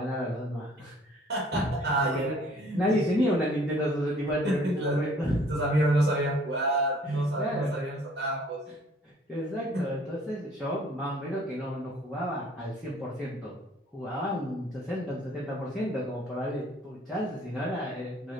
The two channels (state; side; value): normal; both; correlation 0.56